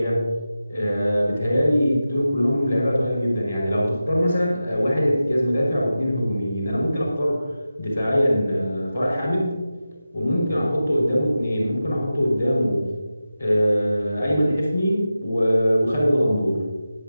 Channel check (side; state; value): both; inverted; correlation -0.93